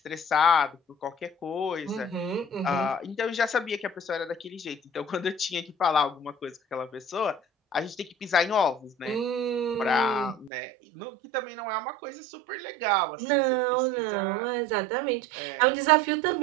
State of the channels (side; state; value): left; drops out; at 10.5 s